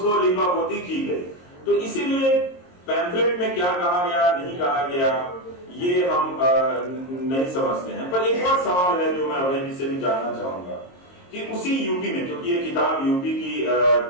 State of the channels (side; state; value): right; late; 22 ms